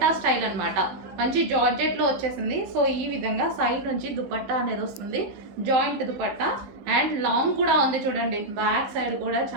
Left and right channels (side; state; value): left; late; 15 ms